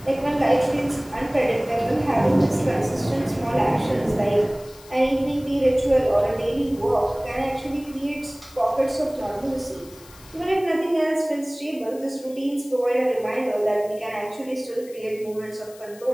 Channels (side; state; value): left; noise; hiss, 22 dB below the sound